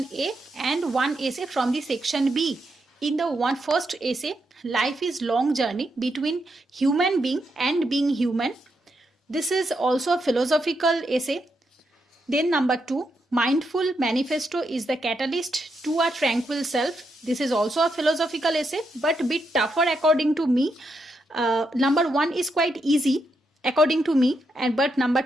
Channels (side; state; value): both; normal; correlation 0.82